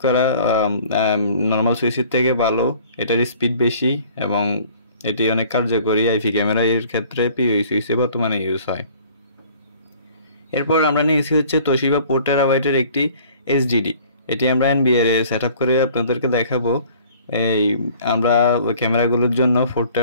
করা নর্মাল সুইচের থেকে ভালো, এটার স্পিড বেশি এবং এটি অনেক কার্যকরী। আইপি ক্যামেরা এর ক্ষেত্রে পিওই সুইচে বর্তমানে ইউজ হয়। এরপর আমরা নিয়েছি হচ্ছে তোশিবা 4 টেরাবাইটের একটি এইচডিডি। এটি আমরা এনবিআর এ সেট আপ করে আপনাদেরকে দেখাবো। এই আমরা ক্যামেরাগুলোর জন্য 4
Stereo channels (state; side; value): inverted; both; correlation -0.52